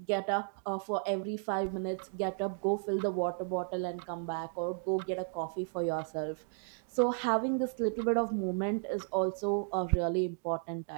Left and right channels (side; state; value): left; silent; 55 dB below the other